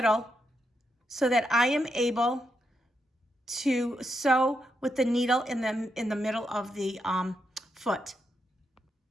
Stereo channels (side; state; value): both; normal; correlation 0.83